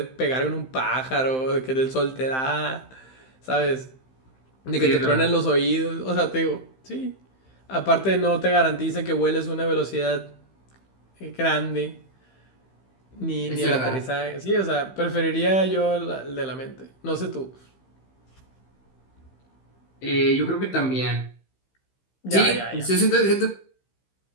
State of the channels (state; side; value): late; right; 15 ms